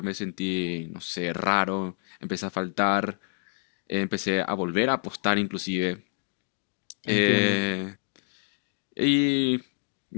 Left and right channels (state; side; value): silent; right; 55 dB below the other